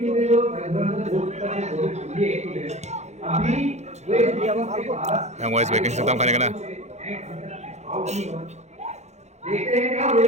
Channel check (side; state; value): left; late; 0.33 ms